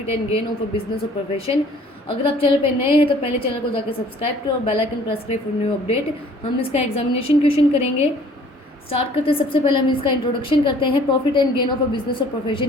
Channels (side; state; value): both; normal; correlation 0.54